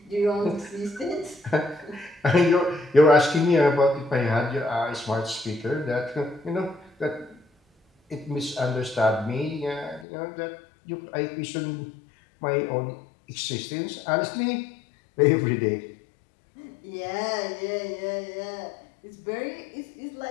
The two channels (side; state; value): right; drops out; at 10.1 s